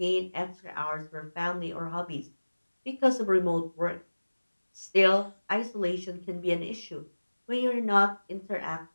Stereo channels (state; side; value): inverted; both; correlation -1.00